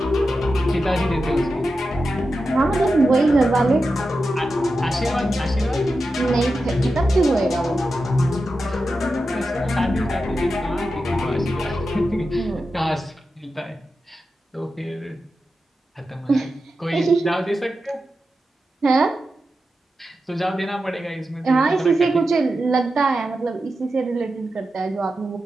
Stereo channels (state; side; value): normal; both; correlation 0.90